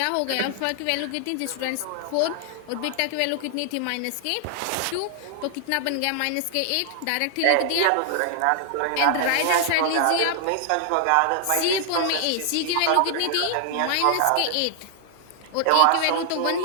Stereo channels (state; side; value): different; both; correlation 0.00